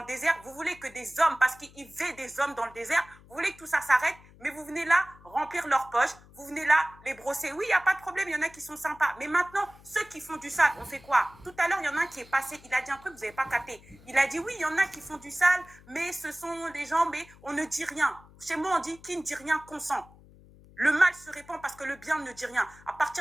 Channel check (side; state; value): left; noise; hum, 23 dB below the sound